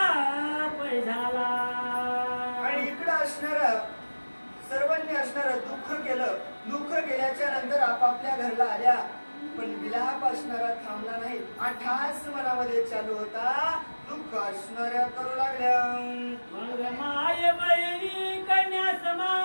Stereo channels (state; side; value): inverted; both; correlation -1.00